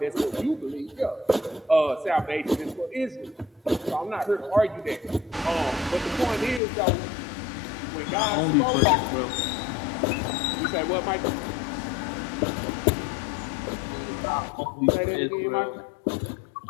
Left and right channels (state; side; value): drops out; right; at 6.6 s